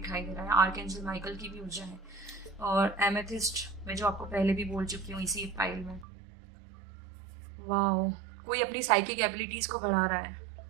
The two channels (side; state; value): left; drops out; at 6.1 s